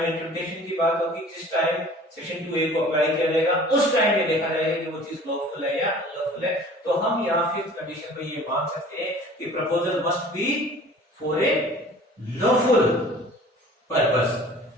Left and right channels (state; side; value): normal; both; correlation 0.46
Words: इंटरप्रिटेशन की बात होगी, जिस टाइम सेक्शन 2A को अप्लाई किया जाएगा, उस टाइम ये देखा जाएगा कि वो चीज लॉफुल है या अनलॉफुल है। तो हम यहाँ 5th कंडीशन पे ये मान सकते हैं कि proposal must be for a lawful